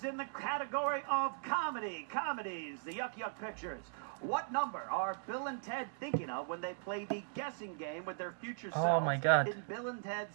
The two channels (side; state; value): left; silent; digital silence